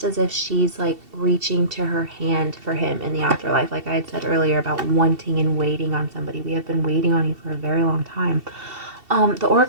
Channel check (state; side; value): late; left; 2.7 ms